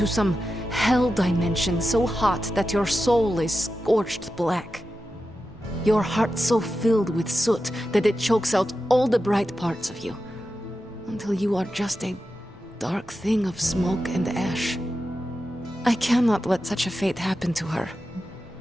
some hell dimension so hot that your soul is scorched black. Your heart so filled with soot that it chokes out all the bright parts of you, until you are just a dark thing of smoke and ash. I cannot let such a fate happen to her.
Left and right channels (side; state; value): both; normal; correlation 0.91